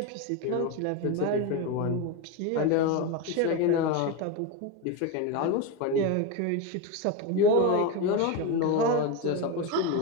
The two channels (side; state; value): both; different; correlation 0.04